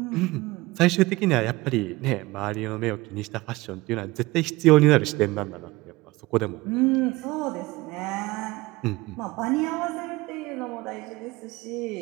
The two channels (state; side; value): quieter; left; 20.9 dB